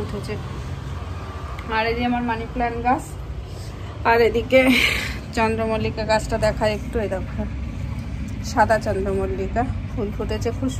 উঠেছে। আর এই যে আমার মানি প্ল্যান্ট গাছ, আর এদিকে চন্দ্রমল্লিকা গাছটা দেখায় একটু। এই দেখো, সাদা চন্দ্রমল্লিকা ফুল ফুটেছে, খুব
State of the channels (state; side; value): identical; both; correlation 1.00